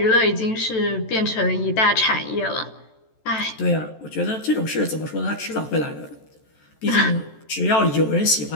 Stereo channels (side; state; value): right; late; 14 ms